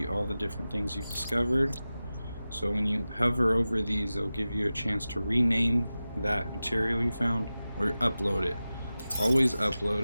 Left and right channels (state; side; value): inverted; both; correlation -0.95